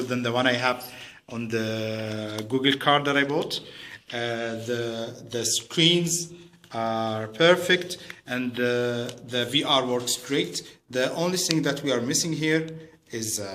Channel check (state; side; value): identical; both; correlation 1.00